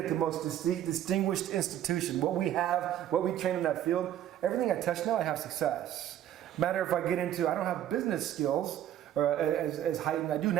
the most distinguished institution. What we have, what we train in that field, everything I touch now, I have success. Matter if I get into, I don't have business skills as heightened. I do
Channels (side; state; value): left; quieter; 11.5 dB